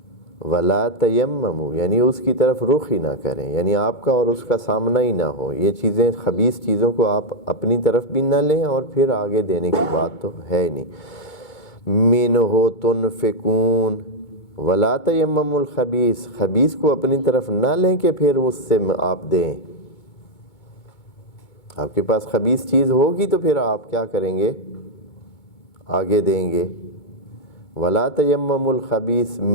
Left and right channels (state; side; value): late; right; 2.2 ms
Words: وَلَا تَيَمَّمُوا یعنی اس کی طرف رخ ہی نہ کریں، یعنی آپ کا اور اس کا سامنا ہی نہ ہو. یہ چیزیں، خبیث چیزوں کو آپ اپنی طرف بھی نہ لیں اور پھر آگے دینے کی بات تو ہے ہی نہیں. مِنْهُ تُنْفِقُونَ وَلَا تَيَمَّمُوا الْخَبِيثَ، خبیث کو اپنی طرف نہ لیں کہ پھر اس سے آپ دیں. آپ کے پاس خبیث چیز ہوگی تو پھر آپ کیا کریں گے؟ آگے دیں گے. وَلَا تَيَمَّمُوا الْخَبِيثَ